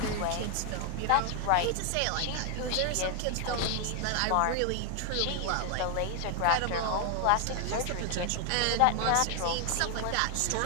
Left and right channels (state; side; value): different; both; correlation 0.00